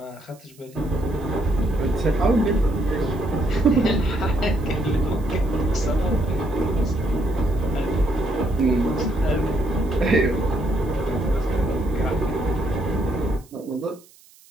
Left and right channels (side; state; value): right; noise; hiss, 27 dB below the sound